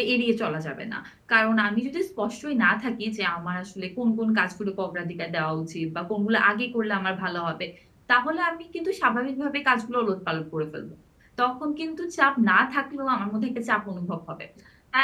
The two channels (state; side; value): identical; both; correlation 1.00